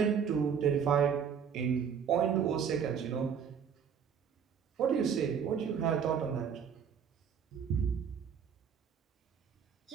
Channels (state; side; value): quieter; left; 7.4 dB